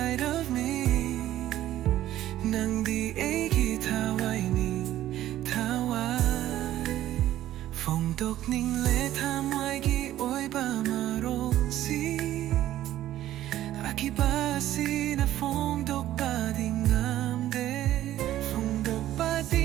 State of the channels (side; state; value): left; quieter; 13.3 dB